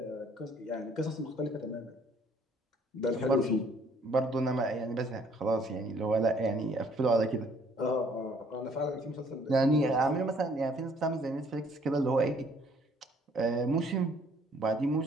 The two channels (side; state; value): both; normal; correlation 0.61